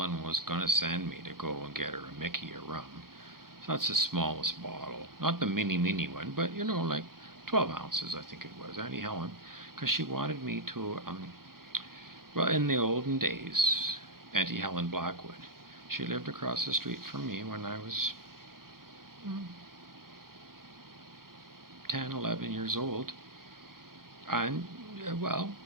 was going to send me to go and get her a Mickey of rum. So that's the smallest bottle. Not the mini one, but, like 12 ounces, I think it was. Aunty Helen, because she wanted me to, well, in the olden days, Aunty Helen Blackwood, she lived across the street from me when I was 10, 11 years old. And, well,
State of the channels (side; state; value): left; late; 0.92 ms